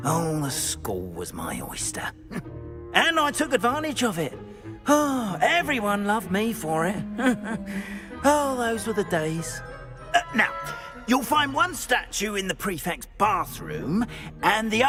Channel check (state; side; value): identical; both; correlation 1.00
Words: Oh, the school was my oyster. And I took advantage of it. Oh, everyone loved me for it. Oh, those were the days. Now, you'll find one statue in the prefect's bathroom and the